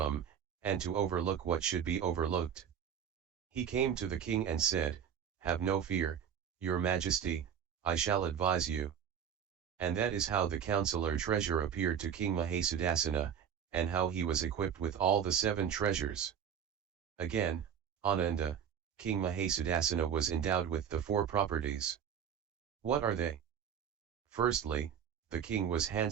and to overlook what should be overlooked. He came to the king and said, "Have no fear, your majesty, I shall advise you." And that is how the counselor treasure appeared to King Mahasudassana, and how he was equipped with all the 7 treasures. Again, Ananda, King Mahasudassana was endowed with the 4 properties. What are they? Firstly, the king was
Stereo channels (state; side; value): quieter; left; 8.4 dB